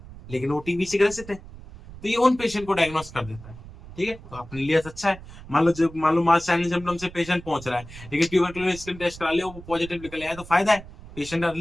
लेकिन वो टीबी से ग्रसित है, तो ये उन पेशेंट को डायग्नोस कर देता है। ठीक है, तो अपने लिए अच्छा है। मान लो मास साइन सिम्टम से पेशेंट पहुंच रहा है, लेकिन ट्यूबरकुलोसिस स्किन टेस्ट करा लिया, वो पॉजिटिव निकल आया, तो फायदा है, पेशेंट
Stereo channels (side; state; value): right; noise; rumble, 16 dB below the sound